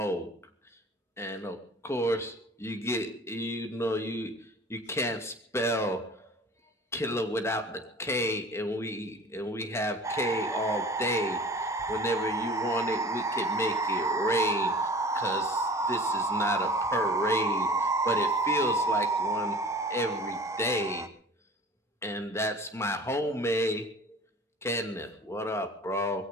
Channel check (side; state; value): both; normal; correlation 0.43